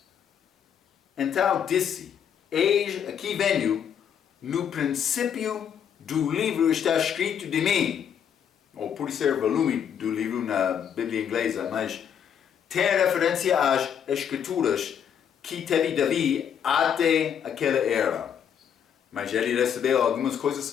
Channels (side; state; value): right; quieter; 8.4 dB